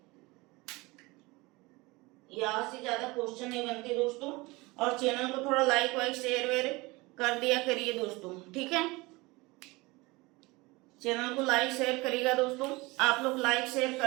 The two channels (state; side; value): quieter; left; 23.1 dB